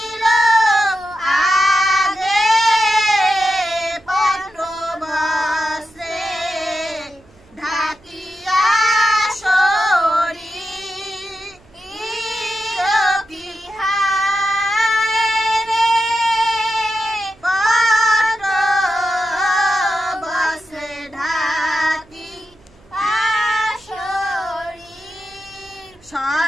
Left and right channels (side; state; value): right; noise; hum, 28 dB below the sound